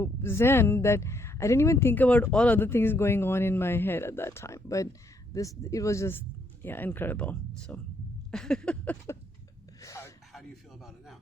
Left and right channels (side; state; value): both; normal; correlation 0.72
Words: zen that I didn't even think about all other things going on in my head at that time. But it was just, yeah, incredible. So. How do you feel about it now?